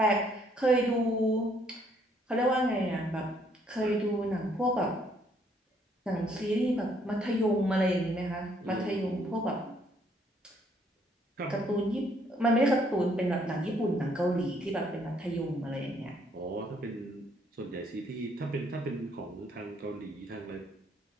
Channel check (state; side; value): normal; both; correlation 0.67